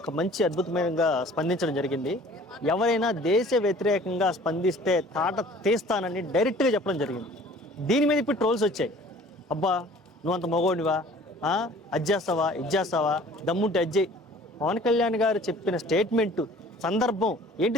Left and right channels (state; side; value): normal; both; correlation 0.49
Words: మంచి అద్భుతమైనగా స్పందించడం జరిగింది. ఎవరైనా దేశ వ్యతిరేకంగా స్పందిస్తే తాట తీస్తానని డైరెక్ట్గా చెప్పడం జరిగింది. దీని మీద ఇప్పుడు ట్రోల్స్ వచ్చాయి. అబ్బా నువ్వు అంత మగోడివా, అది చేస్తావా, ఇది చేస్తావా, దమ్ముంటే అజ్జయ్. పవన్ కళ్యాణ్ గారు చెప్పిన స్టేట్మెంటు సందర్భం